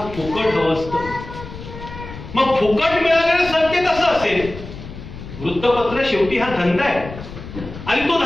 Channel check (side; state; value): left; noise; rumble, 13 dB below the sound